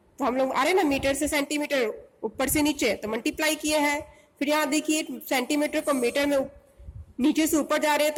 हम लोग आ रहे हैं ना मीटर से सेंटीमीटर ऊपर से नीचे, तो मल्टीप्लाई किए हैं। फिर यहाँ देखिए सेंटीमीटर को मीटर में नीचे से ऊपर जा रहे हैं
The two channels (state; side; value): identical; both; correlation 1.00